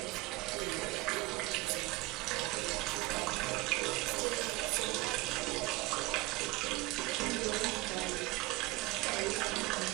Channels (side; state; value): left; quieter; 20.9 dB